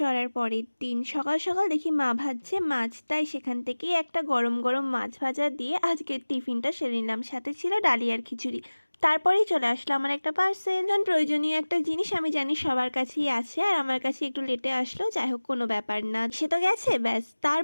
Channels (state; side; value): inverted; both; correlation -1.00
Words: পরের দিন। সকাল সকাল দেখি মা ভাজছে মাছ, তাই সেখান থেকেই একটা গরম গরম মাছ ভাজা দিয়ে আজকের টিফিনটা সেরে নিলাম। সাথে ছিল ডালি আর খিচুড়ি। তারপরেই চলে আসলো আমার একটা পার্সেল। প্রয়োজনীয় একটা জিনিস আমি জানি সবার কাছেই আছে, আর আমার কাছে একটু লেটে আসলো, যাই হোক কোনো ব্যাপার না, সে তো গেছে ব্যাস।